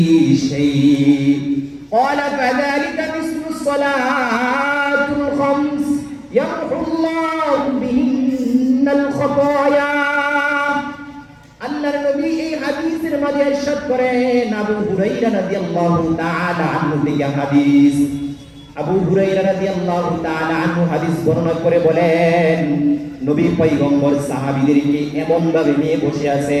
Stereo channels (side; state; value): both; identical; correlation 1.00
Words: شيء قال فذلك مثل الصلاة الخمس يمحو الله بهن الخطايا আল্লাহর নবী এই হাদিসের মাঝে ইরশাদ করেন আবু হুরায়রা রাদিয়াল্লাহু তাআলা আনহু থেকে হাদিস আবু হুরায়রা রাদিয়াল্লাহু তাআলা আনহু হাদিস বর্ণনা করে বলেন নবী পয়গম্বর সাহাবীদেরকে এমন ভাবে নিয়ে বসে